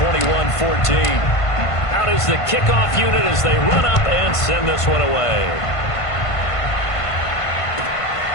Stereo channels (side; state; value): right; late; 1.5 ms